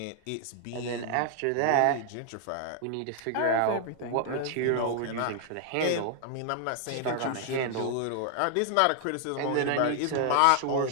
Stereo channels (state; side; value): different; both; correlation 0.00